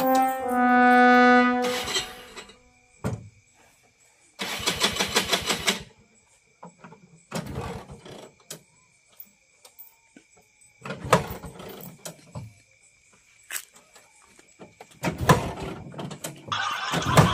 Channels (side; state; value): both; identical; correlation 1.00